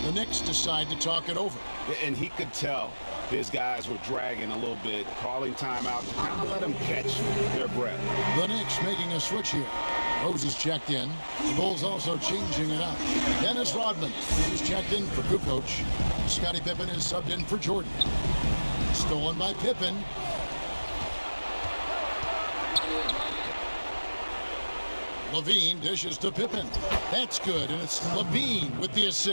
The Knicks decide to talk it over. And he could tell his guys were dragging a little bit, calling timeout to kind of let them catch their breath. The Knicks making a switch here. Rose is checked in. The Bulls also changing it up. Dennis Rodman is checked in for Kukoc. Scottie Pippen is subbed in for Jordan. Stolen by Pippen. Levine dishes to Pippen. That's good, and it's Levine with the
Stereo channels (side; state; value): both; inverted; correlation -1.00